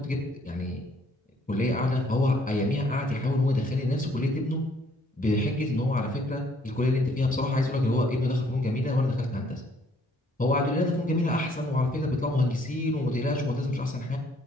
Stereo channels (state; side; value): normal; both; correlation 0.64